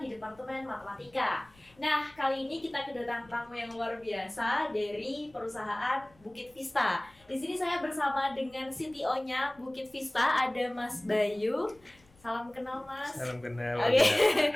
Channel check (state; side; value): noise; left; rumble, 29 dB below the sound